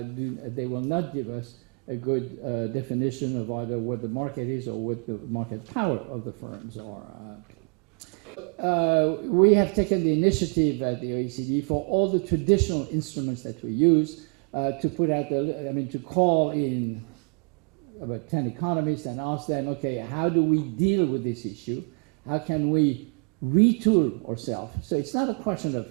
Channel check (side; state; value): left; quieter; 39.8 dB